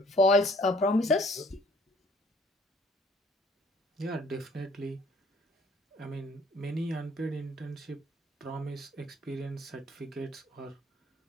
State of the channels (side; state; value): both; normal; correlation 0.58